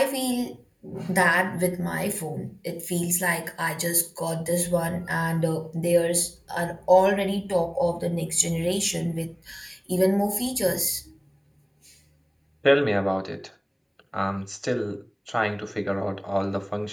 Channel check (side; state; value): both; identical; correlation 1.00